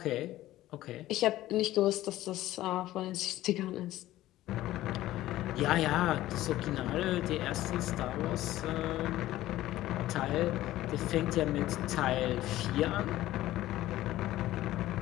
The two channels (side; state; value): right; quieter; 15.2 dB